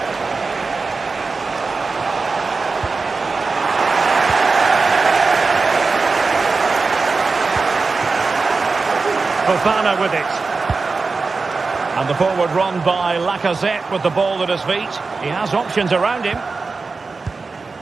Fofana with it. And the forward run by Lacazette with the ball at his feet. He has options around him.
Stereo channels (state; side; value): quieter; left; 4.2 dB